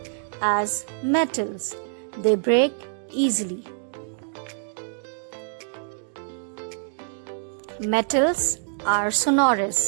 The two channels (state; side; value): silent; left; digital silence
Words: as metals. They break easily. Metals are